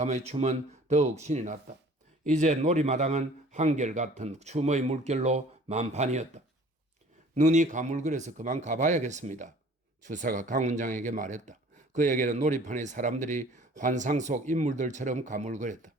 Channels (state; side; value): normal; both; correlation 0.50